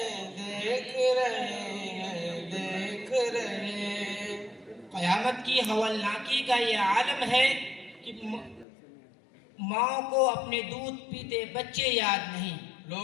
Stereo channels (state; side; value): drops out; right; at 8.7 s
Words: دیکھ رہے ہیں دیکھ رہے ہیں. قیامت کی ہولناکی کا یہ عالم ہے کہ ماں کو اپنے دودھ پیتے بچے یاد نہیں،